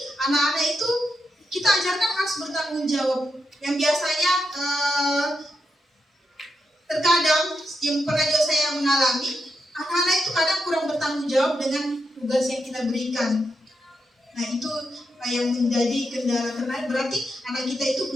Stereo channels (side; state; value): both; normal; correlation 0.83